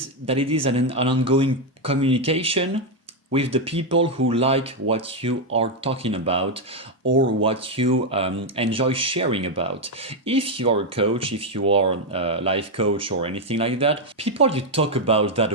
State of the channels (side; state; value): both; normal; correlation 0.03